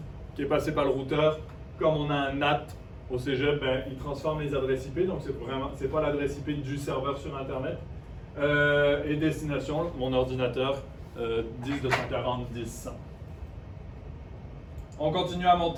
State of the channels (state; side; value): identical; both; correlation 1.00